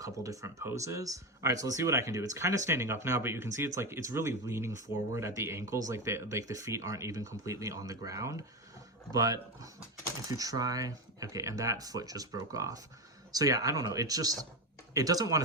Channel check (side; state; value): both; normal; correlation 0.16